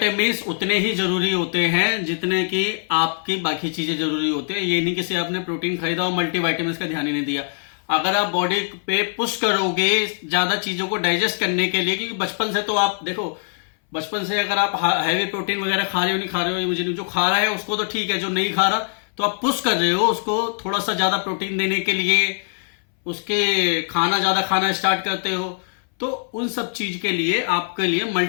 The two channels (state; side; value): silent; right; 62 dB below the other